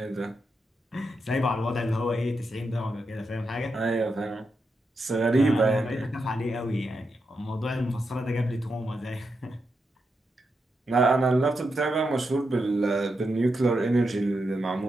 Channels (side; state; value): both; normal; correlation 0.85